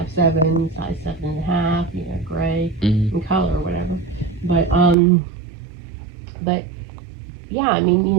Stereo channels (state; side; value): drops out; left; at 5.0 s